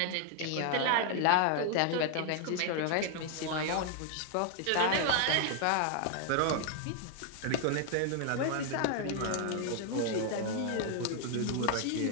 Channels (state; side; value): different; both; correlation 0.00